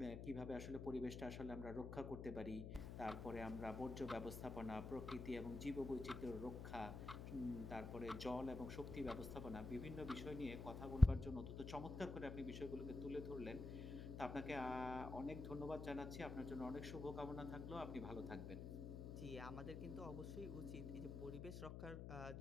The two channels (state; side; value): noise; left; hum, 6 dB below the sound